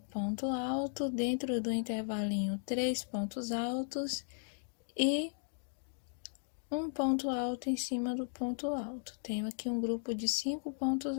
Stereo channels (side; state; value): right; silent; digital silence